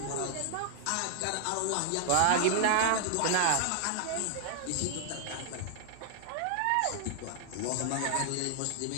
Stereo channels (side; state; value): both; different; correlation 0.01